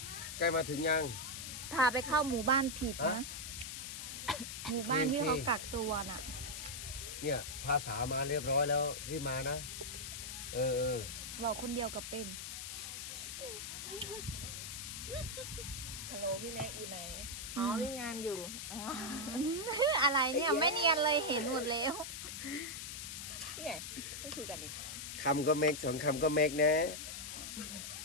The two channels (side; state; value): left; noise; hiss, 7 dB below the sound